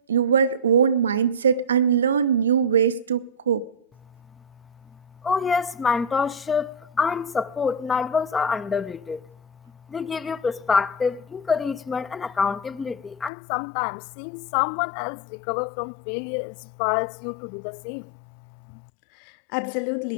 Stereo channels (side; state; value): right; drops out; at 13.3 s